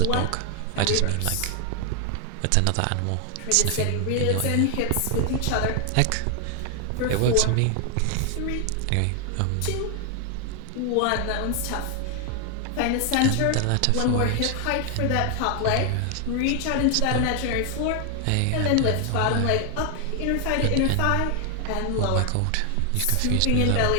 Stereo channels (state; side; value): different; both; correlation 0.00